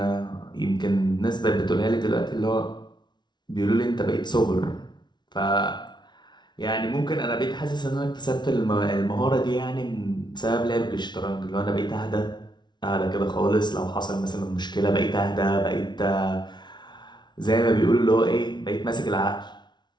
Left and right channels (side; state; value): right; late; 0.21 ms